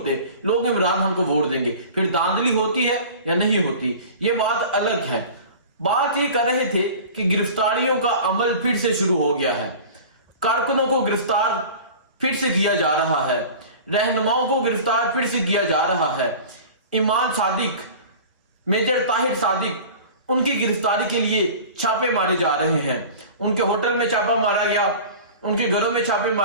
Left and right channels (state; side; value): inverted; both; correlation -0.39